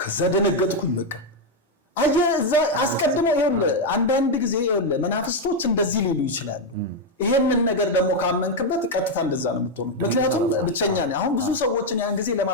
ደነገጥኩኝ በቃ አየህ እዛ አስቀድሞ አንዳንድ ጊዜ መናፍስቶች እንደዚህ ሊሉ ይችላሉ። ይሄንን ነገር ደግሞ ካመንክበት ቀጥታ እንደዛ ነው የምትሆነው። ምክንያቱም ብቸኛ ነኝ። አሁን ብዙ ሰዎችን ያን ጊዜ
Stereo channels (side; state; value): both; normal; correlation 0.03